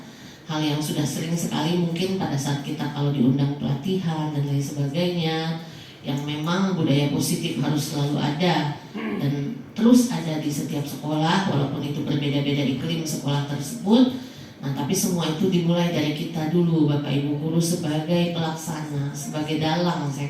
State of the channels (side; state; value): both; identical; correlation 1.00